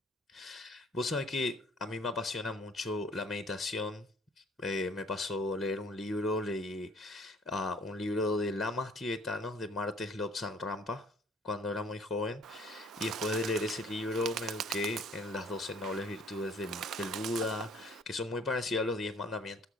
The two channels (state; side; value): normal; both; correlation 0.56